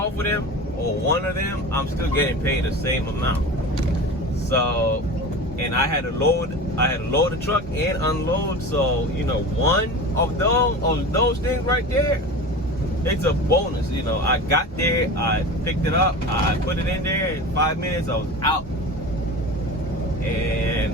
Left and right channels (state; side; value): normal; both; correlation 0.32